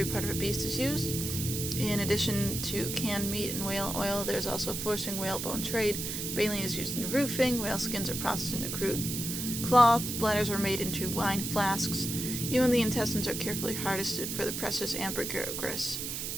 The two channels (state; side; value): noise; right; hiss, 4 dB below the sound